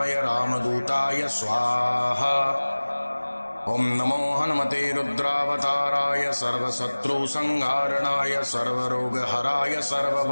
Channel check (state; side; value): inverted; both; correlation -1.00